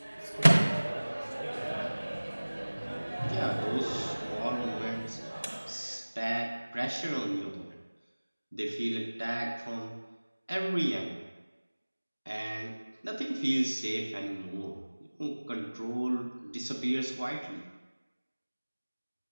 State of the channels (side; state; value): both; inverted; correlation -1.00